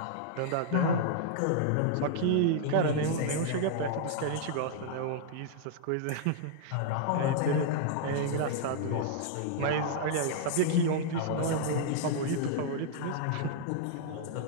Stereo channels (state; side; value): different; both; correlation -0.01